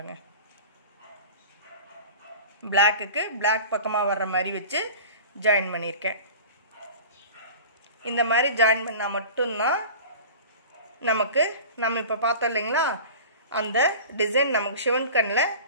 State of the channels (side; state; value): both; inverted; correlation -0.37